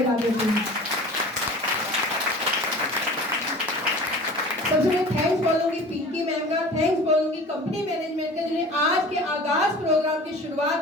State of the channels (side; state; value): both; normal; correlation 0.41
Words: देते हैं। सबसे पहले थैंक्स बोलूंगी पिंकी मैम का, थैंक्स बोलूंगी कंपनी मैनेजमेंट का, जिन्हें आज के आगाज प्रोग्राम की